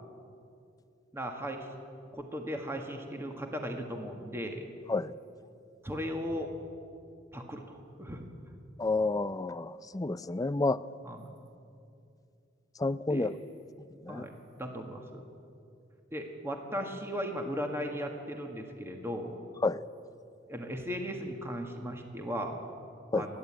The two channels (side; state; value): both; normal; correlation 0.68